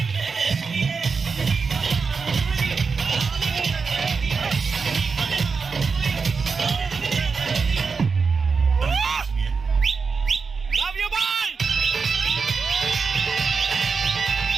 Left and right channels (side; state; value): left; quieter; 5.1 dB